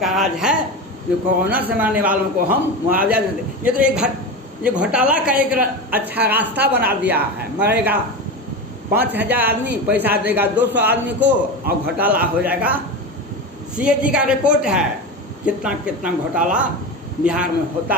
राज्य है जो कोरोना से मरने वालों को हम मुआवजा देते हैं। ये तो ये घोटाला का एक अच्छा रास्ता बना दिया है। मरेगा 5,000 आदमी, पैसा देगा 200 आदमी को और घोटाला हो जाएगा। CAG का रिपोर्ट है कितना कितना घोटाला बिहार में होता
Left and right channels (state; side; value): normal; both; correlation 0.23